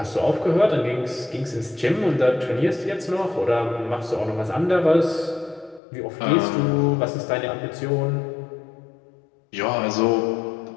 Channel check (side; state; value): right; drops out; at 5.8 s